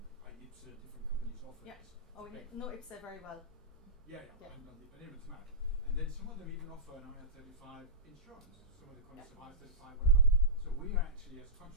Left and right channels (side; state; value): both; normal; correlation -0.13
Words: IPSA, different companies offer this. Oh, we know IPSA very well. I haven't done it, but anyway, it's matter. And then some of them even offer an IR35 insurance, some of the contracts of IR35, whatever. So we are actually, as